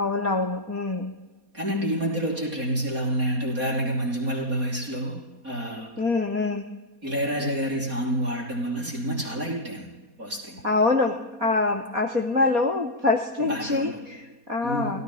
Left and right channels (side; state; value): left; late; 4.2 ms